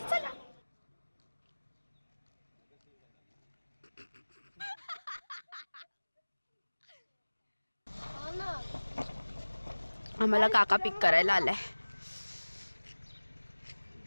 चला. आम्हाला काका पिक करायला आलाय.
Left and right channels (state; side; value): inverted; both; correlation -1.00